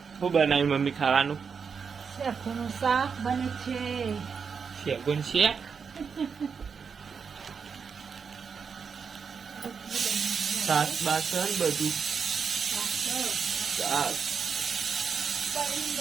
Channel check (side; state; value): left; quieter; 6.0 dB